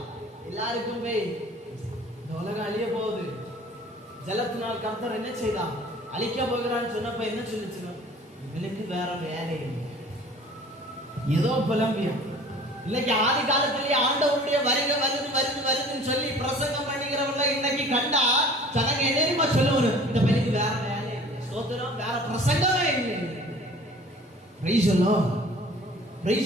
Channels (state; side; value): normal; both; correlation 0.47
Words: எல்லாருக்குமே இந்த உலகம் அழிய போகுது, ஜலத்தினால் கர்த்தர் என்ன செய்தான்? அழிக்க போகிறான்னு சொன்னப்ப என்ன சொல்லிச்சு? எனக்கு வேற வேலை ஏதோ புலம்பியம். இன்னைக்கு ஆதி காலத்திலேயே ஆண்டவருடைய வருதுன்னு சொல்லி பிரசங்கம் பண்ணிக்கிறவங்க இன்னைக்கு கண்டா ஜனங்க என்ன சொல்லுவாரு? இந்த பையனுக்கு வேற வேலை, ஸ்தோத்திரம், வேற பிரசங்கமே இல்லை.